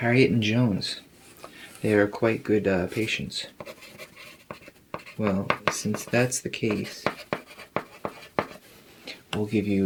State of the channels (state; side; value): identical; both; correlation 1.00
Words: and Jones. They are quite good patients. Well, since that's the case, we'll give